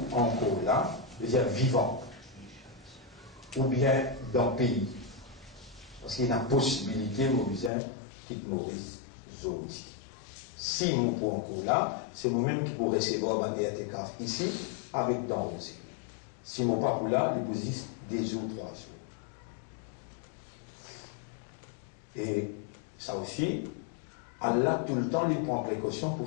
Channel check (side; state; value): right; drops out; at 7.7 s